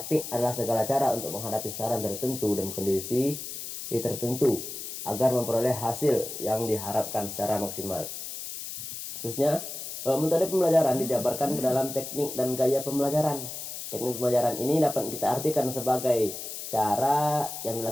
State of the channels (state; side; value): noise; left; hiss, 8 dB below the sound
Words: adalah segala cara untuk menghadapi sasaran tertentu dan kondisi tertentu agar memperoleh hasil yang diharapkan secara maksimal. Terusnya, metode pembelajaran dijabarkan ke dalam teknik dan gaya pembelajaran. Teknik pembelajaran ini dapat kita artikan sebagai cara yang